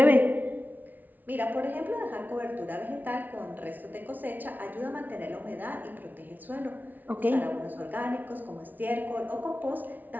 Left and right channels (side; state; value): left; late; 0.082 ms